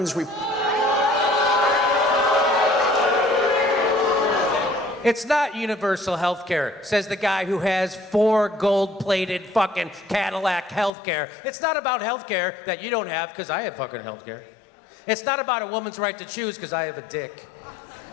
It's not universal health care, says the guy who has 4 gold-plated fucking Cadillac health care. It's not about health care that you don't have, because I have fucking health care. It's not about a woman's right to choose, because I have a dick.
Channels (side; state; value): right; drops out; at 10.9 s